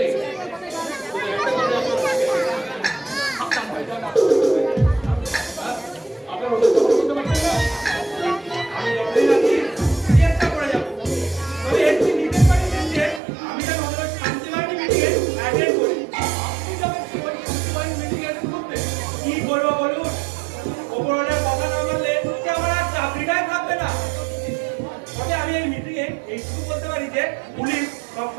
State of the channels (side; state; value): left; drops out; at 13.2 s